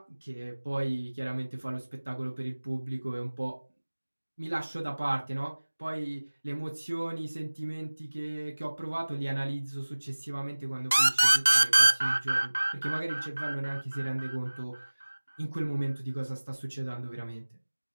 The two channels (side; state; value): both; inverted; correlation -1.00